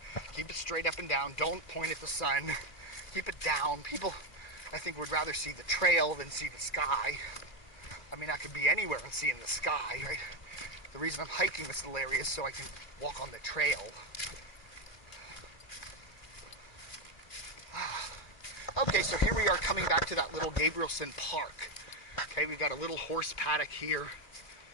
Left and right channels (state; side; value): late; right; 2.4 ms